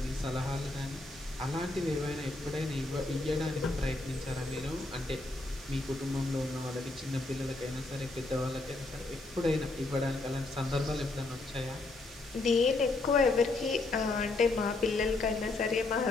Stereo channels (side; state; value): right; quieter; 3.1 dB